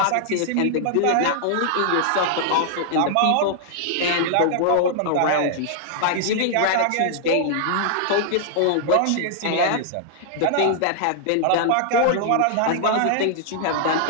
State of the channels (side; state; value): both; different; correlation -0.01